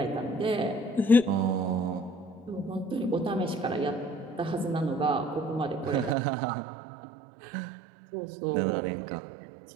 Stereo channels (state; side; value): drops out; left; at 6.2 s